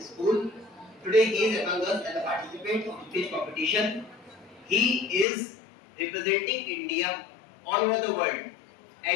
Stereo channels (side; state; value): right; drops out; at 5.2 s